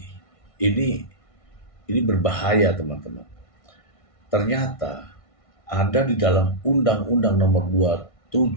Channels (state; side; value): late; right; 1.6 ms